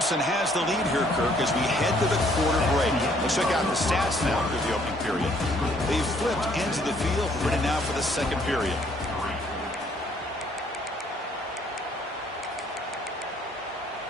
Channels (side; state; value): both; normal; correlation 0.64